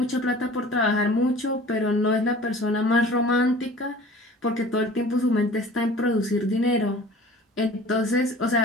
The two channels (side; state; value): both; normal; correlation 0.45